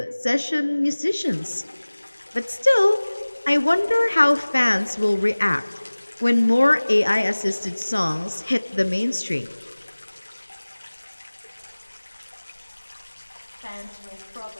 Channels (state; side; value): inverted; both; correlation -1.00